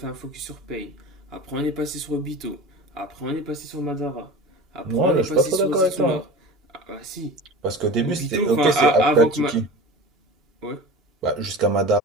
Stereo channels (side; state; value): both; normal; correlation 0.34